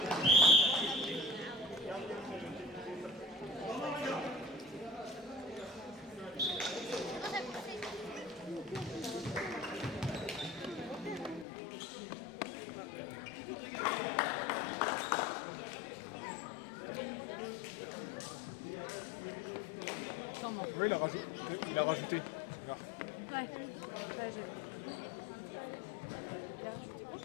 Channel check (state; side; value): drops out; right; at 11.5 s